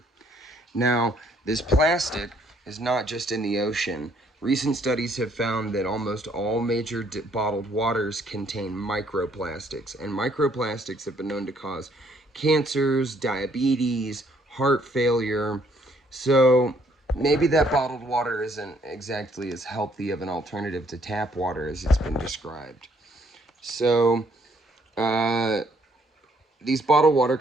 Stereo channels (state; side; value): normal; both; correlation 0.67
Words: Now, this plastic is not just in the ocean. Recent studies have found that almost all major bottled waters contain microplastics, and microplastics have been known to cause cancers, diabetes, heart failure. So maybe that bottled water isn't exactly as healthy of an alternative to tap water as it's been described. So these bottled water